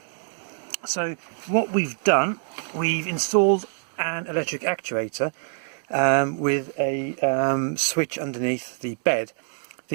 So what we've done, we've installed an electric actuator with a switch underneath the bed.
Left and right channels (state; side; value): silent; left; 62 dB below the other